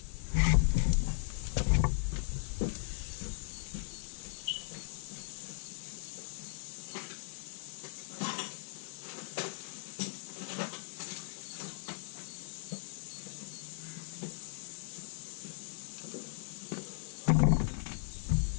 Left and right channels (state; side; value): silent; right; digital silence